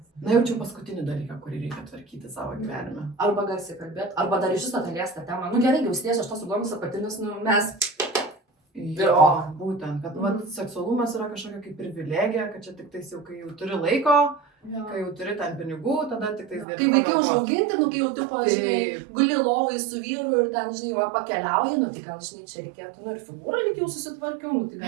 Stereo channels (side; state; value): left; drops out; at 16.7 s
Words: jaučiu paskutinį dalyką, kurį reikia tvarkyti savo gyvenime. Arba garsiai kalbėti, arba dar iš viso palies tą temą. Nu gerai, jau sties aš tos įdomus apatinius, nu mes... Jo, būtent, kad seksualumas yra kažkokia kaip privilegija, kad čia tik tais jau, kai jau turi laiko, kai jau turi ten pinigų, tada tik tais gali. Kai vaikai užauginti, nu kai jau tu, žinai, guli lovai su vyru ir ten, žinai, pakeliauji, nu tai gal, žinai, čia reikėtų, nu ir figūrą lyg jau susitvarkiau, nu tai